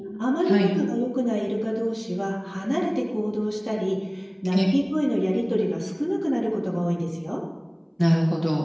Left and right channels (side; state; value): both; identical; correlation 1.00